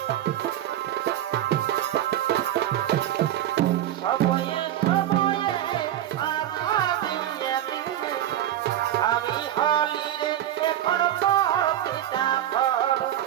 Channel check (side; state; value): left; quieter; 12.1 dB